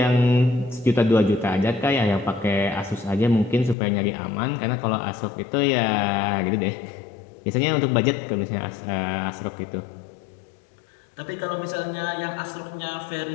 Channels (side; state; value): right; drops out; at 3.8 s